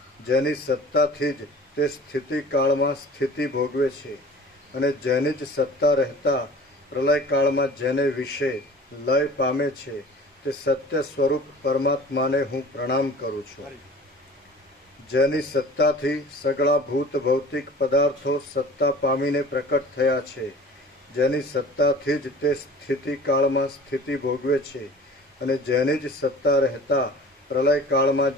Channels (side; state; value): both; normal; correlation 0.43